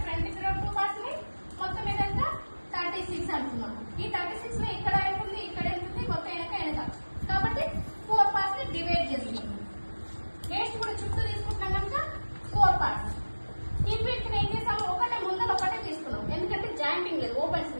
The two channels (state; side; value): inverted; both; correlation -1.00